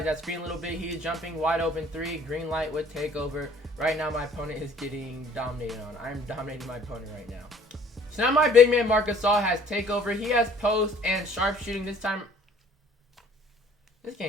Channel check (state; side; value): normal; both; correlation 0.55